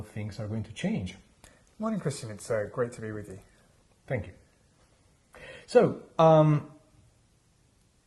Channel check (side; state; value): both; identical; correlation 1.00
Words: things are going to change. Morning, Christian. It's great to be with you. Thank you. So,